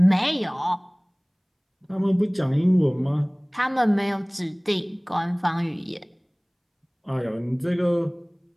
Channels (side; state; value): both; identical; correlation 1.00